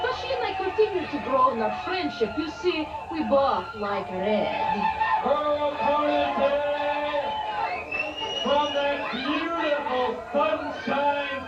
she and I continue to grow in our friendship. You see, we both like red. Her opponent today, from that beautiful sunshine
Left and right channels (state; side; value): identical; both; correlation 1.00